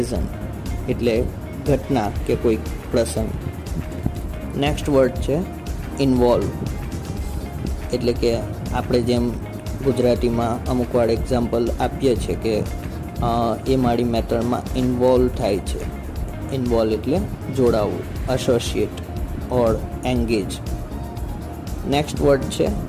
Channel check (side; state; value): both; identical; correlation 1.00